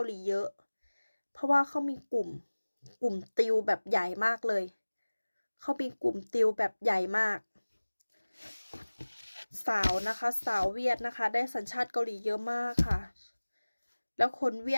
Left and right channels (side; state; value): both; inverted; correlation -1.00